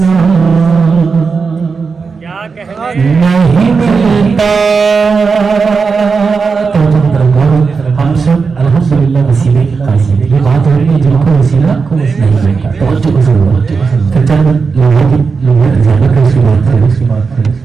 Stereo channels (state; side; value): quieter; left; 5.0 dB